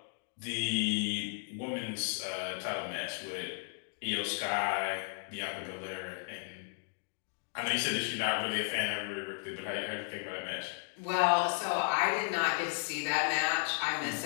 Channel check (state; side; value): silent; right; 55 dB below the other